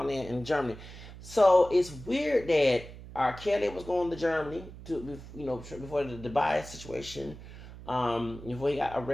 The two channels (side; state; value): right; noise; hum, 15 dB below the sound